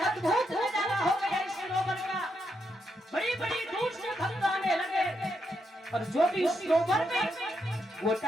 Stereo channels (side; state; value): both; normal; correlation 0.81